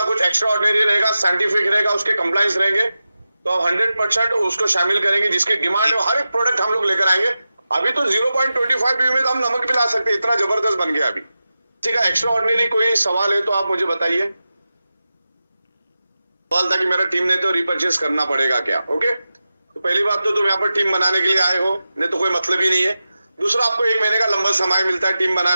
कुछ एक्स्ट्रा ऑर्डिनरी रहेगा, साइंटिफिक रहेगा, उसके कंप्लायंस रहेंगे, तो आप 100% उसको शामिल करेंगे। जिसकी डिमांड है हर एक प्रोडक्ट हम लोग लेकर आएंगे। अभी तो 0.25 बीवी में तो हम नमक भी ला सकते हैं, इतना जबरदस्त बन गया अभी। ठीक है, एक्स्ट्रा ऑर्डिनरी कोई सवाल है तो आप मुझे बताइए। सवाल था कि मेरा टीम ने तो रिपर्चेस करना पड़ेगा क्या? ओके, तो पहली बात तो तुम यहाँ पर टीम बनाने के लिए आए हो, नहीं तो कोई मतलब ही नहीं है। दूसरा, आपको 1 महीने का लंबा समय मिलता है टीम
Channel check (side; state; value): both; inverted; correlation -0.93